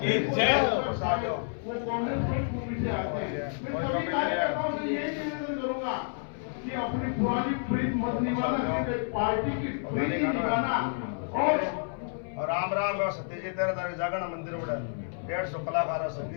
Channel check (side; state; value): right; silent; 58 dB below the other